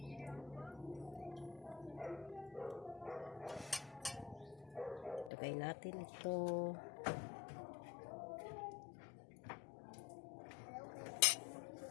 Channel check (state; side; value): drops out; right; at 5.3 s